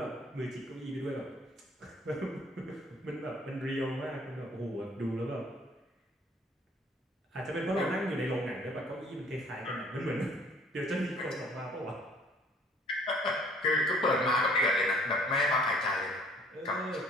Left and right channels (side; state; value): both; normal; correlation 0.57